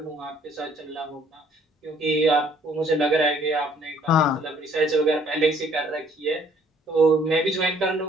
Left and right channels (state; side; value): normal; both; correlation 0.61